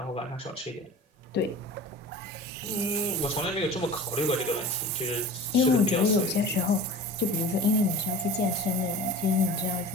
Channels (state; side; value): normal; both; correlation 0.37